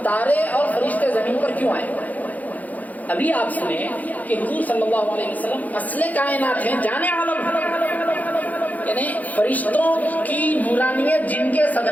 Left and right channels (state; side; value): late; right; 0.079 ms